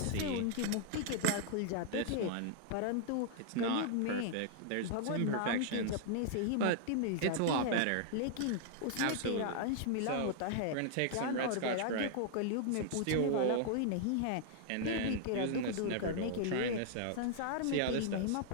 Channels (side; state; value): both; different; correlation -0.01